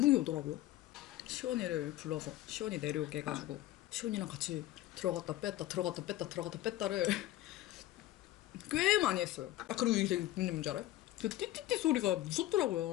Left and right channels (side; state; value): right; quieter; 15.1 dB